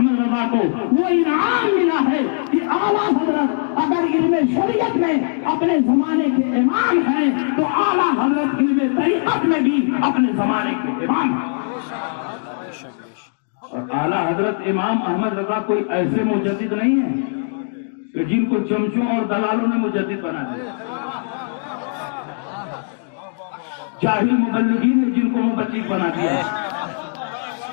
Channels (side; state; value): right; silent; digital silence